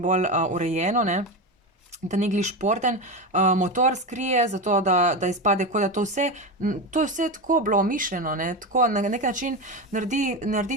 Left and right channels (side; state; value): both; normal; correlation 0.18